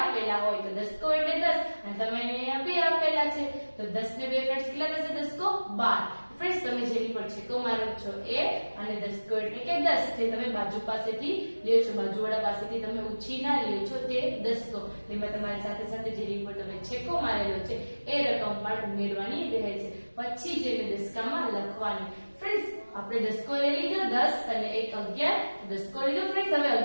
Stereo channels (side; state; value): both; inverted; correlation -1.00